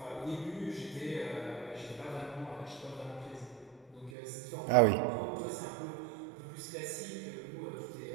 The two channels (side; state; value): left; drops out; at 4.1 s